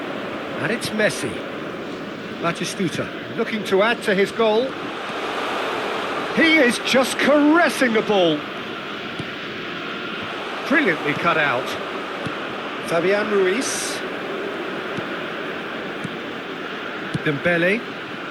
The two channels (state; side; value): identical; both; correlation 1.00